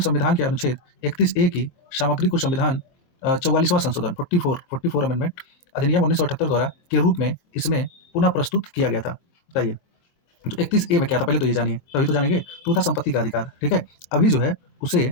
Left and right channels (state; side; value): late; right; 23 ms